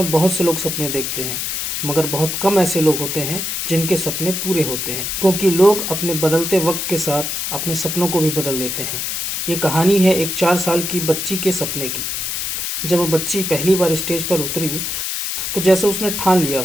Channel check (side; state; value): left; noise; hiss, 2 dB below the sound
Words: बहुत से लोग सपने देखते हैं, मगर बहुत कम ऐसे लोग होते हैं जिनके सपने पूरे होते हैं, क्योंकि लोग अपने बदलते वक्त के साथ अपने सपनों को भी बदल देते हैं। ये कहानी है एक 4 साल की बच्ची के सपने की। जब वो बच्ची पहली बार स्टेज पर उतरी तो जैसे उसने ठान लिया